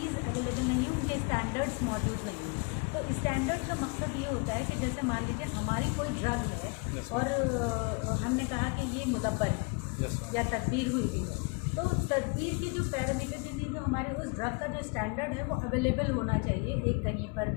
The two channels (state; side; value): quieter; right; 31.7 dB